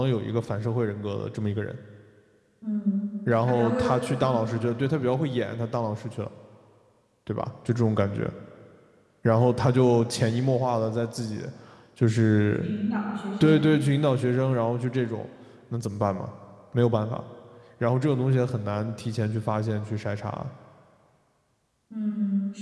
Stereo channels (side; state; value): both; identical; correlation 1.00